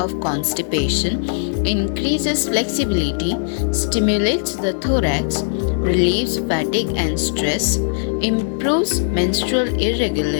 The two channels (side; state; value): right; silent; 66 dB below the other